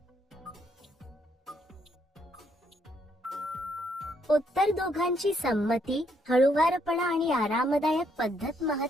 उत्तर दोघांची संमती, हळूवारपणा आणि आरामदायक पद्धत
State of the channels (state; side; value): normal; both; correlation 0.72